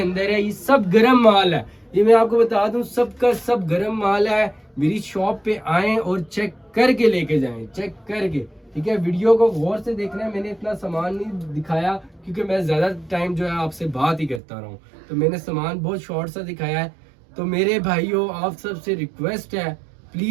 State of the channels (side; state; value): left; drops out; at 14.4 s